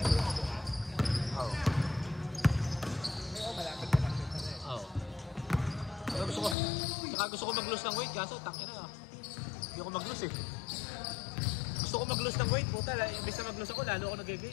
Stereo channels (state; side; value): drops out; right; at 6.6 s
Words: Gusto ko mag-lose ng weight, kaso tangin na. Hindi ako mag-lose eh. Gusto ko mag-lose ng weight, puta. Imbis na mag-lose ako, lalo ako